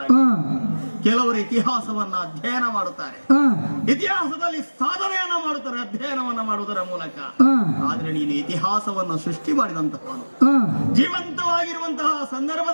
ಕೆಲವರು ಇತಿಹಾಸವನ್ನ ಅಧ್ಯಯನ ಮಾಡುತ್ತಾರೆ, ಇತಿಹಾಸದಲ್ಲಿ ಸಾಧನೆಯನ್ನ ಮಾಡುತ್ತಾರೆ ಅಧ್ಯಯನವನ್ನ ಮಾಡುವುದರ ಮೂಲಕ. ಆದ್ರೆ ನೀನು ಇತಿಹಾಸವನ್ನು ಸೃಷ್ಟಿ ಮಾಡಿದಂತಹವನು. ಜೀವಂತವಾಗಿರುವಂತಹ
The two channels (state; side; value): inverted; both; correlation -1.00